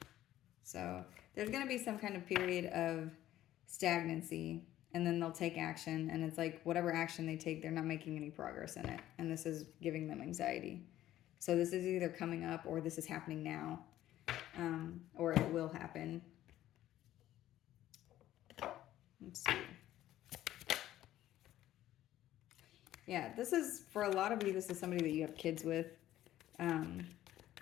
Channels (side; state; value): right; quieter; 13.5 dB